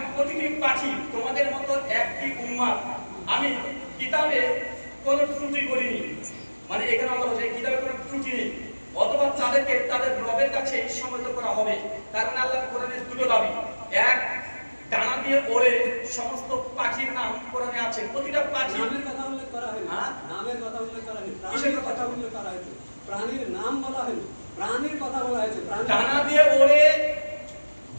প্রতিটি পাখি তোমাদের মতো একটি উম্মাত আমি কিতাবে কোনো ত্রুটি করিনি। মানে এখানে আমরা বলছি কিতাবে কোনো ত্রুটি নেই, অথবা তাদেরকে তাদের রবের কাছে সম্মত করা হবে। কারণ আল্লাহ কোরআনের দুটো দাবি, এক ডানা দিয়ে ওড়ে সমস্ত পাখির নাম কোরআনে আছে, প্রতিটা পাখি নামের কথা উল্লেখ করা হয়নি, হ্যাঁ? নামের কথা উল্লেখ করা হয়নি, কিসের প্রাণীর কথা? কথা উল্লেখ করা হয়েছে, প্রাণীর নাম বলা হয়নি, প্রাণীর কথা বলা হয়েছে। ডানা দিয়ে ওড়ে,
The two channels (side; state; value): both; inverted; correlation -1.00